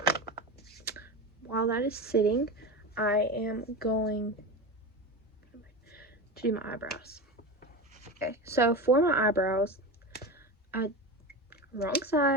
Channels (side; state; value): both; normal; correlation 0.24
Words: sitting, I am going to do my eyebrows. Okay, so for my eyebrows, wrong